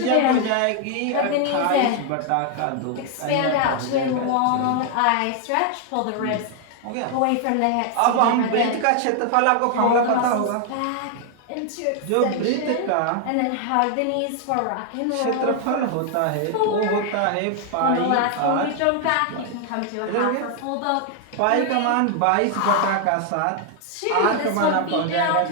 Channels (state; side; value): different; both; correlation 0.00